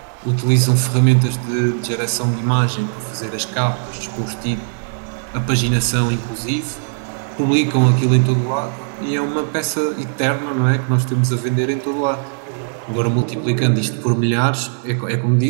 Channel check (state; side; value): silent; left; digital silence